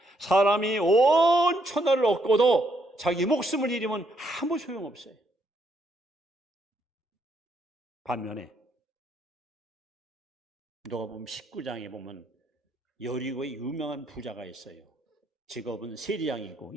사람이 온 천하를 얻고도 자기 목숨을 잃으면 아무 소용없어요. 반면에 누가 보면 19장에 보면 여리고의 유명한 부자가 있어요. 직업은 세리장이고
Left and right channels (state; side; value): normal; both; correlation 0.73